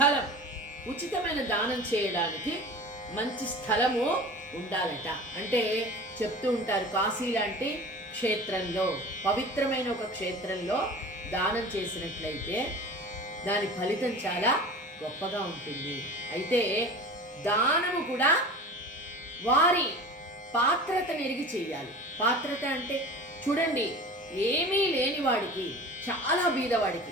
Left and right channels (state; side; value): normal; both; correlation 0.37